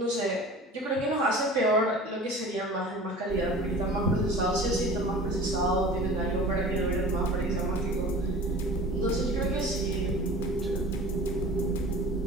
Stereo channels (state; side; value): normal; both; correlation 0.40